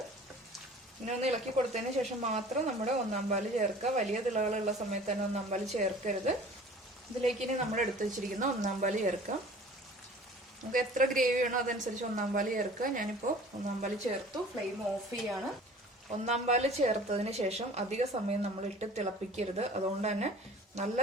ഇങ്ങനെ ഒന്ന് ഇളക്കി കൊടുത്തതിന് ശേഷം മാത്രം നമ്മുടെ 1ാം പാല് ചേർക്കുക. വലിയ തിളകളുള്ള സമയത്ത് തന്നെ 1ാം പാല് ചേർക്കരുത്. ഇതിലേക്ക് ഇനി നമ്മൾ എടുത്തു വെച്ചിരിക്കുന്ന 1ാം പാല് ചേർക്കാം. നമുക്ക് എത്ര ഗ്രേവി വേണോ അതനുസരിച്ച് 1ാം പാല് ചേർക്കുക. ഞാനിപ്പോൾ 1ാം പാല് ചേർത്തു. ഫ്ലെയിം ഓഫ് ചെയ്യാണ്. 1ാം പാല് ചേർത്തതിന് ശേഷം അധിക സമയം നമ്മൾ ഇട്ട് തിളപ്പിക്കരുത്. അതുകൊണ്ട് തന്നെ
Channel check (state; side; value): normal; both; correlation 0.46